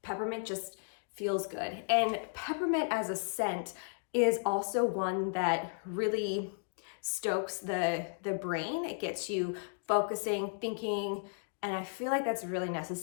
peppermint just feels good. And peppermint as a scent is also one that really stokes the brain. It gets you focusing, thinking, and I feel like that's really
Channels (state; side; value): silent; right; digital silence